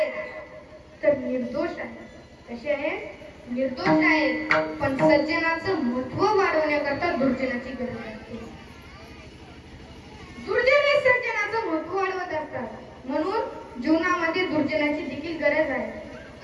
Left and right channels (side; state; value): both; identical; correlation 1.00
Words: तर निर्दोष आहेत. कसे आहेत? निर्दोष आहेत. पण सज्जनाचं महत्व वाढवण्याकरता दुर्जनाची गरज असते. दुर्जन हे सज्जनाचं महत्व वाढवत असतात. म्हणून जीवनामध्ये दुर्जनाची देखील गरज आहे.